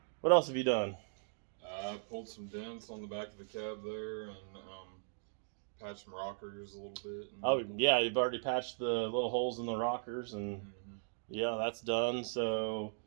What else have you done? I pulled some dents on the back of the cab there, and patched some rockers a little bit. Oh yeah, you've already patched the little holes in the rockers, and yeah, that's done. So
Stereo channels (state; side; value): silent; left; digital silence